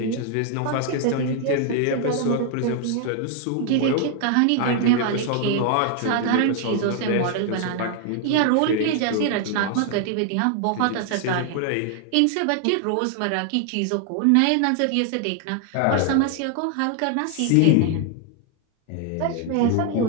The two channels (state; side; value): different; both; correlation 0.00